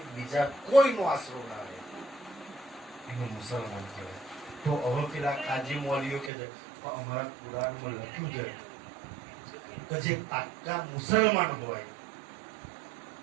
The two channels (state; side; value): drops out; left; at 6.3 s